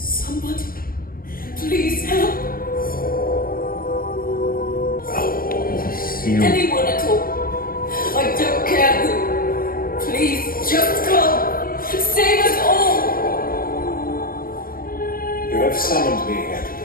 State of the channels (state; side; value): late; right; 0.42 ms